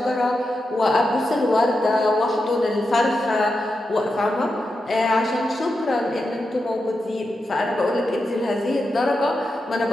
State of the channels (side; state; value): both; normal; correlation 0.88